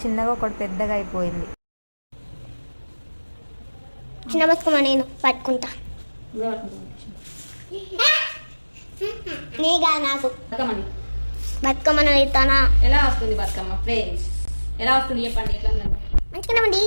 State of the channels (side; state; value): both; inverted; correlation -1.00